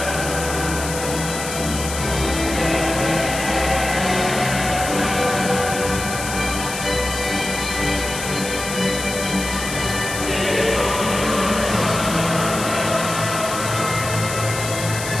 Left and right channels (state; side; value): noise; left; hiss, 7 dB below the sound